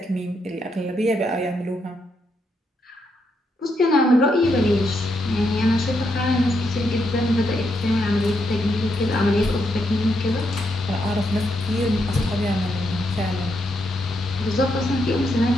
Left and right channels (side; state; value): both; normal; correlation 0.80